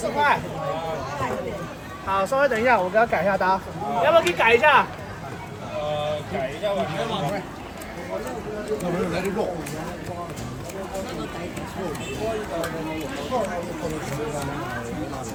块。好，稍微等一下，我给他改一下单，要不要给你改一下？改一下吧。那没有来得肉。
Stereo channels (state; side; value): identical; both; correlation 1.00